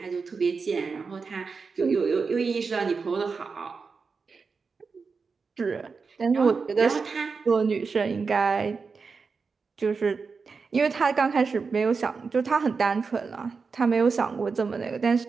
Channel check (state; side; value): quieter; left; 4.9 dB